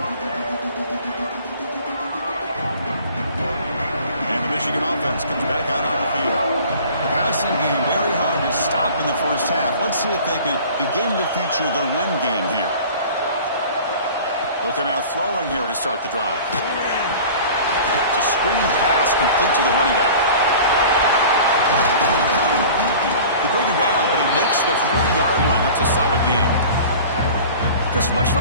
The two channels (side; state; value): both; inverted; correlation -0.43